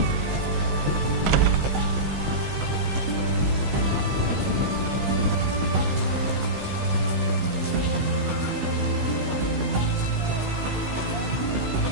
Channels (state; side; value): late; left; 16 ms